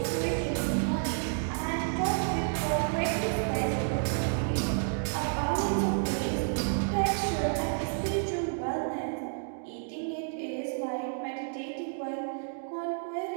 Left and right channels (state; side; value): silent; left; digital silence